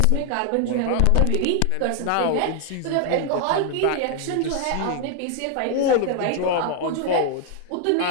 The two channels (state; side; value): different; both; correlation 0.00